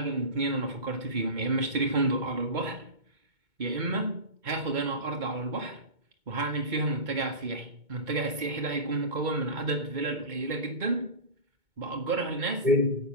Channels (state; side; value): late; left; 2.2 ms